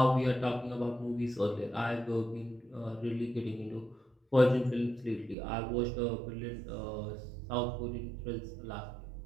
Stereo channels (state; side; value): drops out; left; at 5.4 s